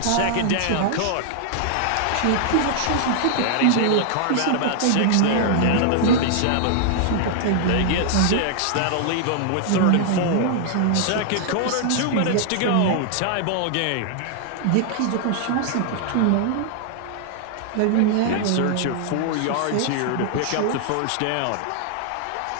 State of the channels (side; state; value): both; different; correlation -0.01